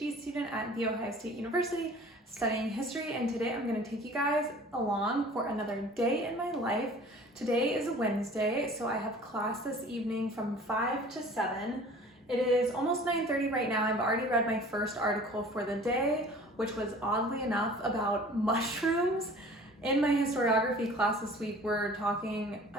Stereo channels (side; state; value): both; normal; correlation 0.46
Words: student at The Ohio State University studying history, and today I'm going to take you guys along for another day in my life. Today is Wednesday, so I have class this evening from 5 to 7. It is almost 9:30 right now. I've already read my first article for the day, which was oddly enough about mushrooms. In my historiography class this week, we're talking,